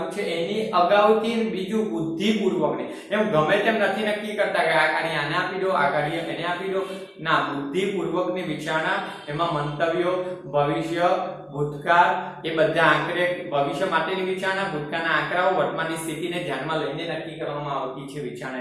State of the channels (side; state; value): both; identical; correlation 1.00